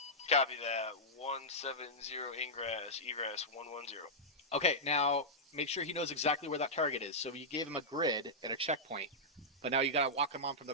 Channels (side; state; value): both; normal; correlation -0.10